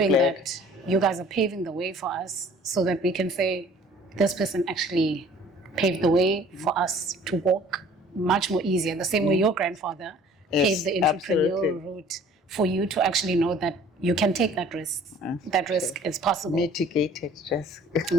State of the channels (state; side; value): normal; both; correlation 0.52